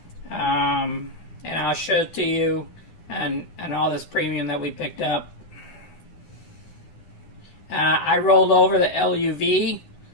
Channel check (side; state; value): right; late; 9.7 ms